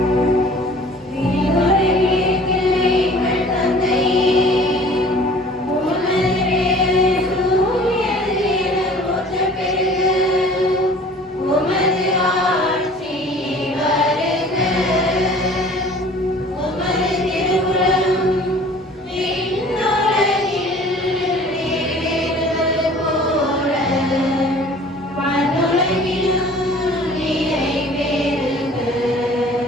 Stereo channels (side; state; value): both; normal; correlation 0.49